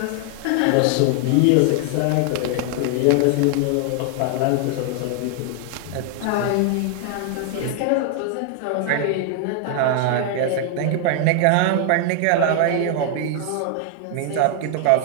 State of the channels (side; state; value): both; different; correlation 0.00